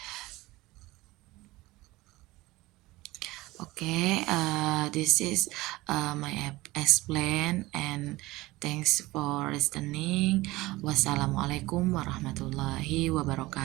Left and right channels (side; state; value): left; quieter; 19.7 dB